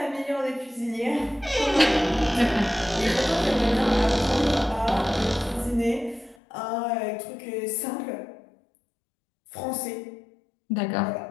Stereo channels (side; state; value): right; drops out; at 6.4 s